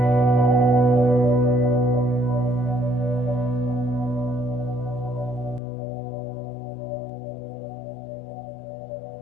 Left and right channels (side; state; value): right; drops out; at 5.6 s